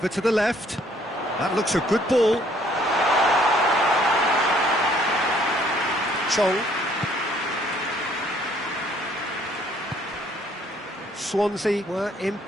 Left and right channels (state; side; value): normal; both; correlation 0.62